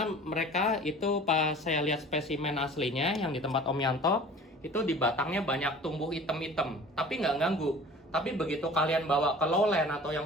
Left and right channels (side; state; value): both; normal; correlation 0.44